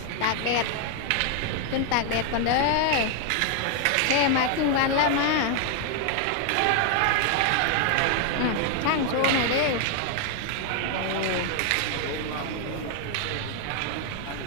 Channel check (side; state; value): both; different; correlation 0.00